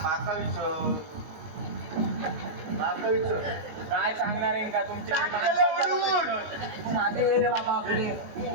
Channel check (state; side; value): late; left; 19 ms